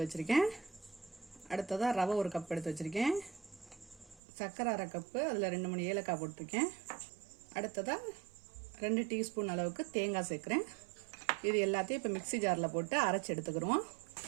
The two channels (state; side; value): drops out; left; at 4.2 s